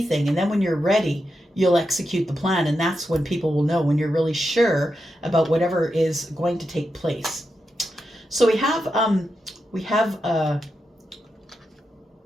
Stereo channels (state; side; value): normal; both; correlation 0.87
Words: and then when you're ready, you'll execute the plan, and that's when people will know, when you're really sure about whatever is going to take place. So we have